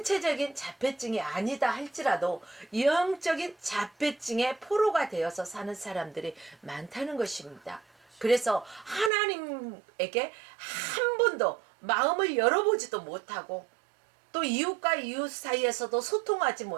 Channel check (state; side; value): drops out; left; at 9.1 s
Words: 자폐증이 아니다 할지라도 영적인 자폐증의 포로가 되어서 사는 사람들이 많다는 것입니다. 그래서 하나님에게 한 번도 마음을 열어보지도 못하고, 또 이웃과 이웃 사이에서도 소통하지